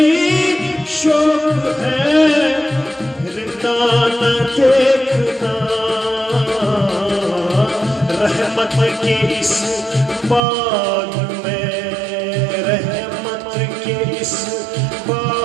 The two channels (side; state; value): left; drops out; at 10.4 s